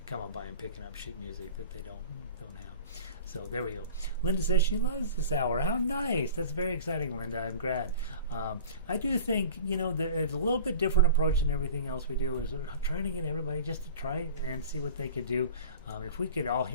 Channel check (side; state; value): both; inverted; correlation -0.40